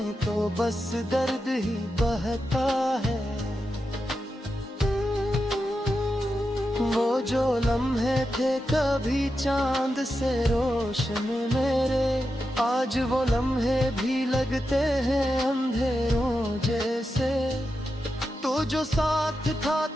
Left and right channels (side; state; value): both; normal; correlation 0.89